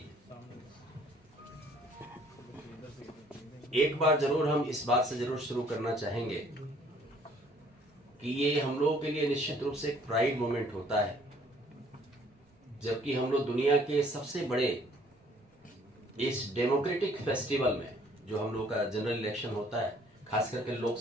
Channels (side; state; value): both; normal; correlation 0.60